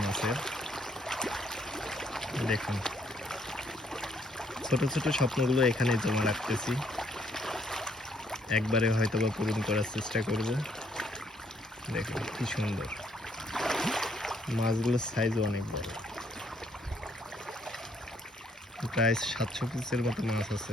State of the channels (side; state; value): both; normal; correlation 0.69